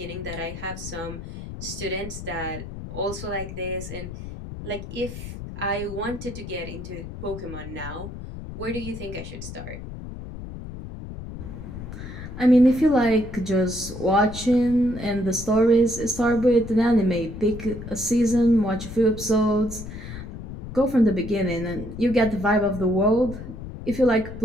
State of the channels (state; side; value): noise; left; rumble, 10 dB below the sound